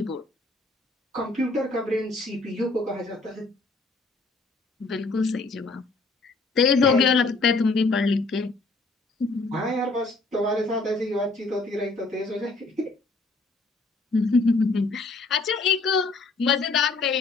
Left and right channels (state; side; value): quieter; right; 3.5 dB